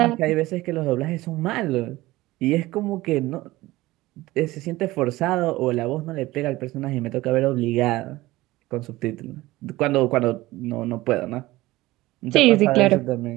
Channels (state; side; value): quieter; left; 18.5 dB